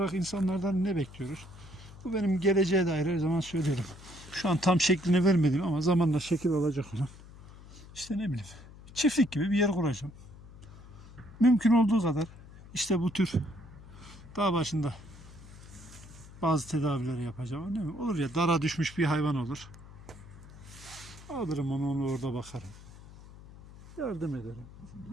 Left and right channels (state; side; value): noise; left; hum, 18 dB below the sound